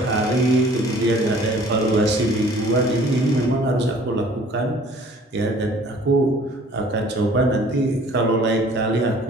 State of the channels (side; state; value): both; normal; correlation 0.53